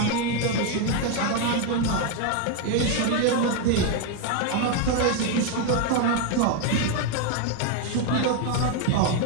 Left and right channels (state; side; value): different; both; correlation 0.01